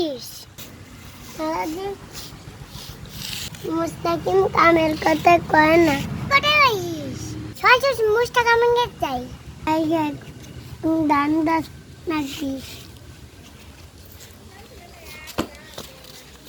মুস্তাকিম কামের কথা কয় না কোথায় যাইস সহজ মুস্তাকিম কে চাই আই গেট দান দাস নাকি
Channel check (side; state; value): both; identical; correlation 1.00